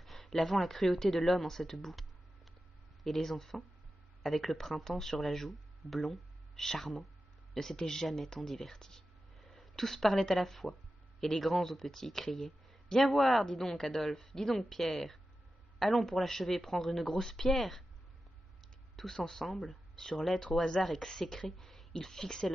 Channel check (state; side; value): normal; both; correlation 0.92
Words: lavant la cruauté de l'homme en cette boue. Et les enfants, avec le printemps sur la joue, blonds, charmants, ne s'étaient jamais tant divertis. Tous parlaient à la fois, et les grands aux petits criaient « Viens voir, dis donc, Adolphe, dis donc, Pierre. Allons pour l'achever prendre une grosse pierre. » Tous ensemble, sur l'être au hasard exécré, ils fixaient